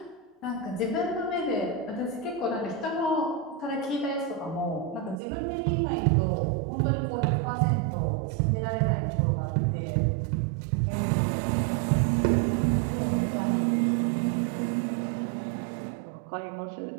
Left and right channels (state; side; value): drops out; left; at 5.2 s